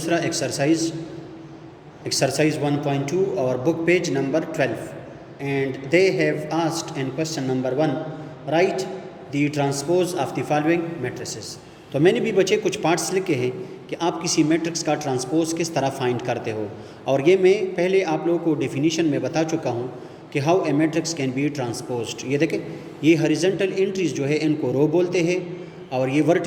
एक्सरसाइज 1.2 और book page number 12 and they have asked in question number 1 right the transpose of the following matrices. तो मैंने भी बच्चे कुछ पार्ट्स लिखे हैं कि आप किसी मैट्रिक्स का ट्रांसपोज किस तरह फाइंड करते हो, और ये मैं पहले आप लोगों को डेफिनेशन में बता चुका हूँ कि how a matrix can be transposed. ये देखें, ये हॉरिजॉन्टल एंट्रीज जो है इनको रो बोलते हैं और ये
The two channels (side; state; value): both; identical; correlation 1.00